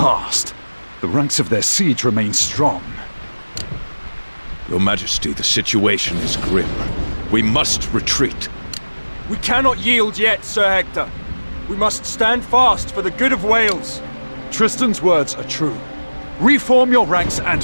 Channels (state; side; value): inverted; both; correlation -1.00